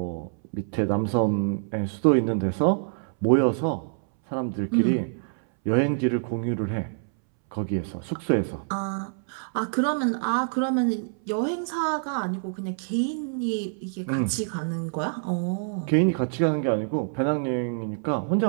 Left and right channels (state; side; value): silent; left; 61 dB below the other